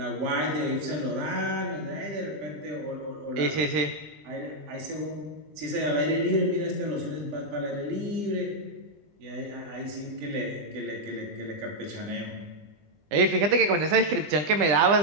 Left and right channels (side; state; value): left; late; 20 ms